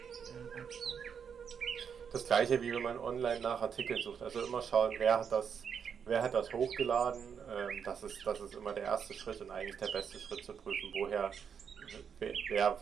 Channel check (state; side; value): quieter; left; 7.1 dB